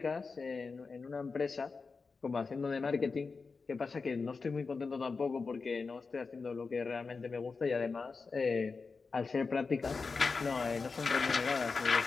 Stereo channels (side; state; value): right; quieter; 4.6 dB